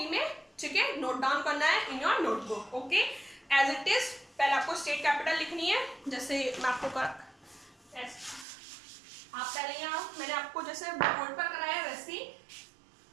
में। ठीक है, नोट डाउन करना है in your notebook. Okay, as it is. पहले आपको स्टेट कैपिटल लिखनी है, जैसे मैं आपको आप पहले यहाँ मैंने आपको जैसे बोर्ड पर कराया वैसे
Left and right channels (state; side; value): drops out; left; at 8.5 s